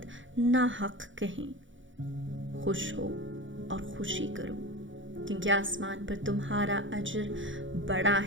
नाहक कहें। खुश हो और खुशी करो, क्योंकि आसमान पर तुम्हारा अजर बड़ा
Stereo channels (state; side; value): late; left; 0.56 ms